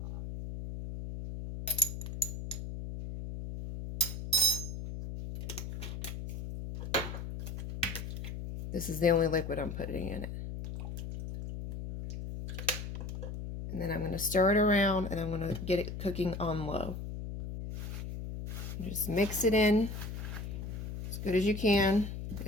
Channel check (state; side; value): noise; left; hum, 7 dB below the sound